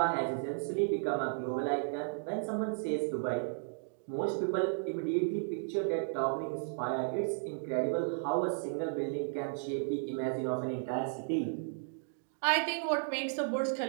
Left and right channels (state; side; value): silent; left; digital silence